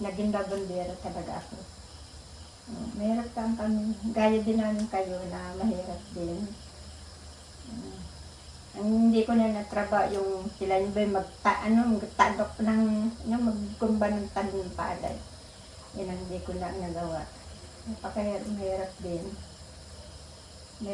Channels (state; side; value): identical; both; correlation 1.00